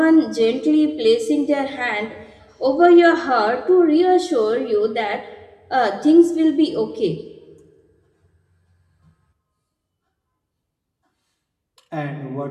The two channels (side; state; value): both; identical; correlation 1.00